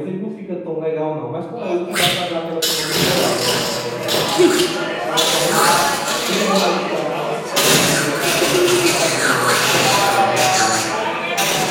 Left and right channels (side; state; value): both; identical; correlation 1.00